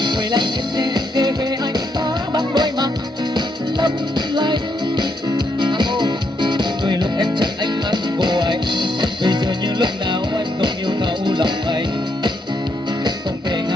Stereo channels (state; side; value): normal; both; correlation 0.77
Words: quay lại nhìn kể về anh ta bằng đôi mắt lấp lánh. Đôi lúc em chắc ánh mắt của anh, bây giờ như lúc nào anh không yêu thấu lòng anh. Không thể